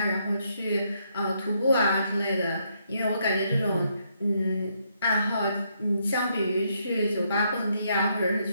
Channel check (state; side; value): inverted; both; correlation -0.75